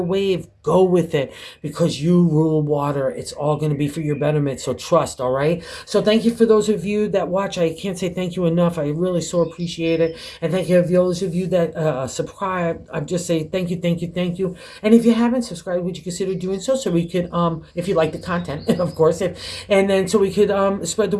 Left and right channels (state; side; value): identical; both; correlation 1.00